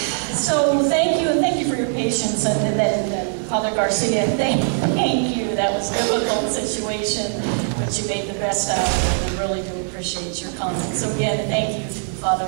so thank you for your patience, and then Father Garcia, thank you. That was a difficult situation, but you made the best out of it, and I really do appreciate your comments. So again, thank you,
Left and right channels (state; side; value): silent; left; 65 dB below the other